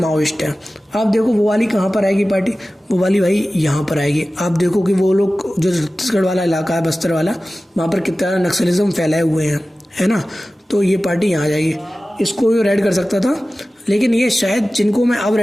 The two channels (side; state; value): both; normal; correlation 0.96